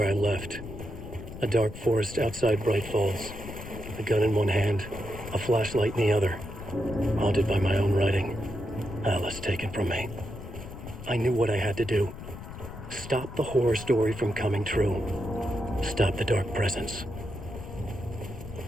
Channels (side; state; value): left; noise; rumble, 11 dB below the sound